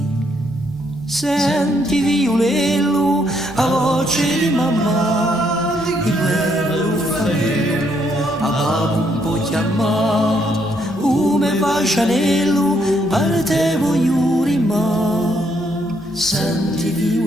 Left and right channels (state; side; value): normal; both; correlation 0.73